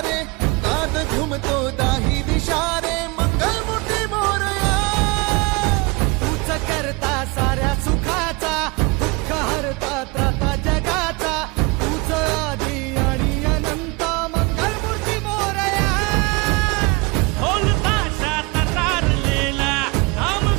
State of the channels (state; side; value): quieter; left; 27.2 dB